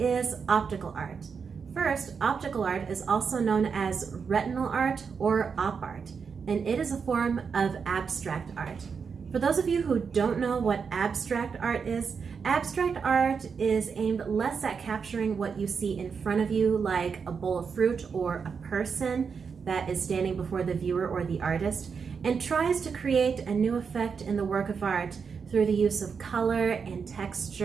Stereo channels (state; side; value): quieter; left; 5.9 dB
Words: optical art? First, optical art is also known as retinal art or op art, and it is a form of abstract art. For those of you who don't know what abstract art is aimed less at capturing what you see in front of you, like a bowl of fruit or a person that is standing before the viewer or the artist, and tries to create a new effect in the work of art through the use of color and